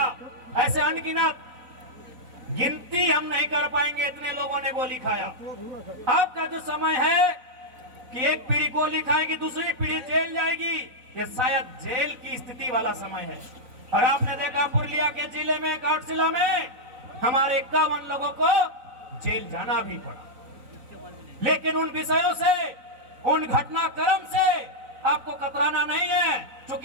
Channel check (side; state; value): left; late; 4.0 ms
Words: ऐसे अनगिनत, गिनती हम नहीं कर पाएंगे, इतने लोगों ने गोली खाया। अब का जो समय है कि एक पीढ़ी गोली खाएगी, दूसरी पीढ़ी जेल जाएगी, ये शायद जेल की स्थिति वाला समय है। और आपने देखा पुरुलिया के जिले में, घाटशिला में हमारे 51 लोगों को जेल जाना भी पड़ा। लेकिन उन विषयों से, उन घटनाक्रम से आपको कतराना नहीं है,